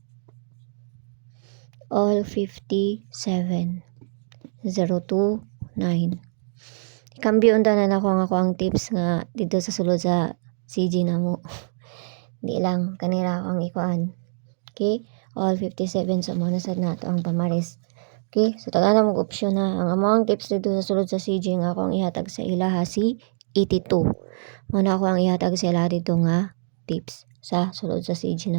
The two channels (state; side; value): silent; left; digital silence